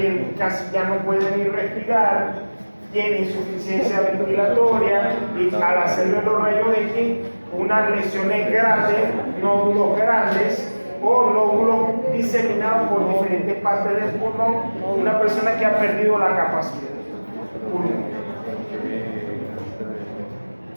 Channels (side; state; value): both; inverted; correlation -1.00